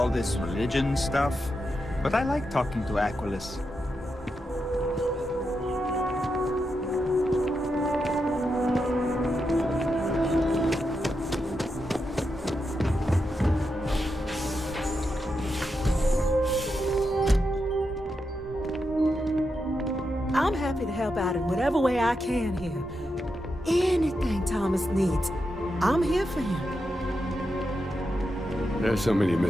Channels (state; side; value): normal; both; correlation 0.86